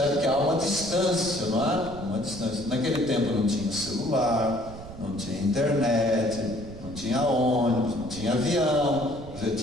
que há uma distância, não é? Uma distância. Naquele tempo não tinha celular, não tinha internet, não tinha ônibus, não tinha avião. Você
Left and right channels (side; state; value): right; noise; rumble, 14 dB below the sound